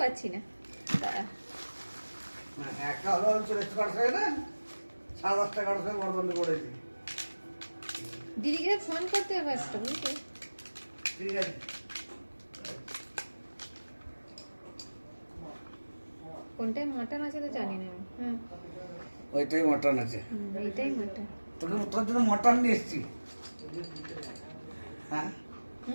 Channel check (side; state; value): both; inverted; correlation -1.00